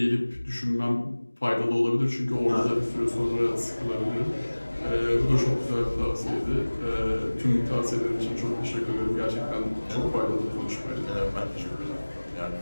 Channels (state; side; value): inverted; both; correlation -1.00